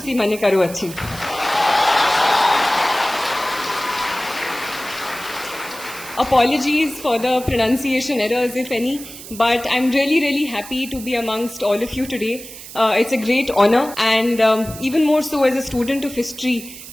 माने करू अच्छी Apologies for the pronunciation errors, if any, but I'm really happy to be amongst all of you today. It's a great honor, and even more so as a student of history,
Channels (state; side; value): noise; right; hiss, 14 dB below the sound